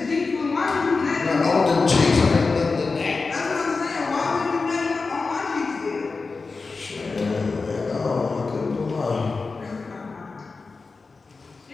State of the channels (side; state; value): right; quieter; 4.2 dB